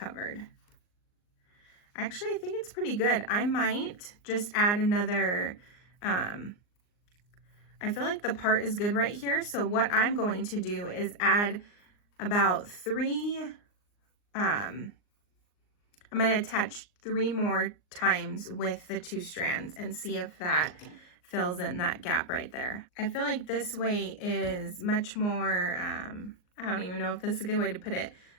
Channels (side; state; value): right; late; 39 ms